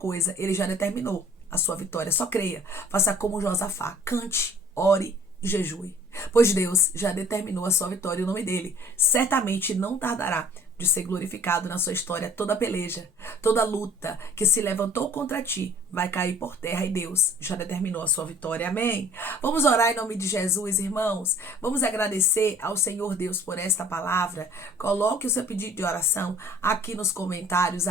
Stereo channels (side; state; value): both; normal; correlation 0.51